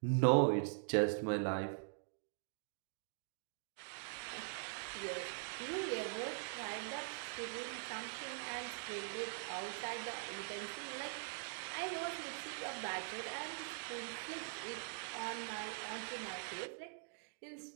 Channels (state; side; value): silent; left; digital silence